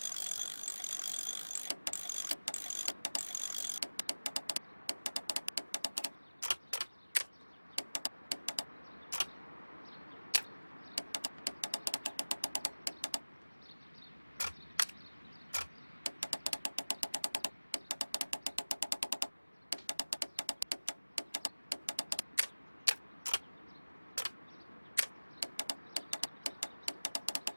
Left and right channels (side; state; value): both; inverted; correlation -1.00